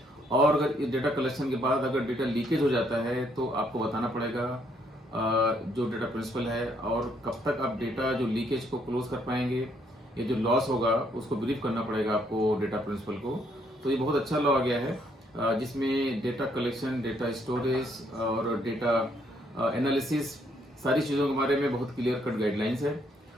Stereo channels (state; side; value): normal; both; correlation 0.70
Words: और अगर डेटा कलेक्शन के बाद अगर डेटा लीकेज हो जाता है तो आपको बताना पड़ेगा जो डेटा प्रिंसिपल है, और कब तक आप डेटा जो लीकेज को क्लोज कर पाएंगे, ये जो लॉस होगा उसको ब्रीफ करना पड़ेगा आपको डेटा प्रिंसिपल को। तो ये बहुत अच्छा लॉ आ गया है, जिसमें डेटा कलेक्शन, डेटा स्टोरेज और डेटा एनालिसिस, सारी चीज़ों के बारे में बहुत क्लियर कट गाइडलाइंस है।